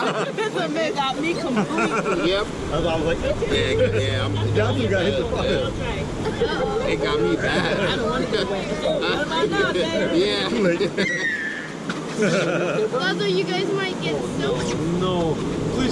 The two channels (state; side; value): identical; both; correlation 1.00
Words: This one got me completely. Yep. I was like, Yeah. Johnson got hit the fire. It got me bad. I don't want to go away. What am I not, baby? Yeah. Too late. Although you guys might get soaked. No.